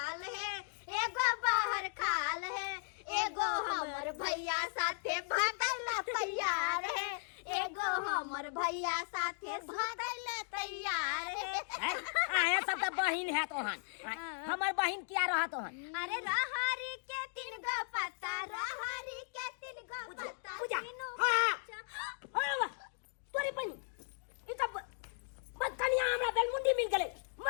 है एगो बाहर खाल है एगो हमर भैया साथे भागल तैयार है एगो हमर भैया साथे भागल तैयार है आया सब तो बहिन है तोहन हमर बहिन क्या रहा तोहन अरे रहरी के तीन गो पत्ता रहरी के तीन गो पत्ता पूजा तीनों हां तोरी बहिन ई सब बदकनिया हमरा बेलमुंडी मिल गेले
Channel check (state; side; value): silent; right; digital silence